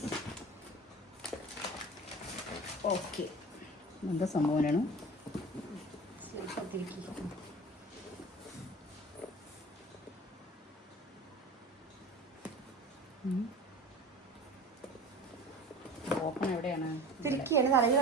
ഓക്കെ. എന്താ സംഭവമാണ്? ഓപ്പൺ എവിടെയാണ്? തിരിക്കുകയാണ്, തലയിൽ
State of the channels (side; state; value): both; normal; correlation 0.37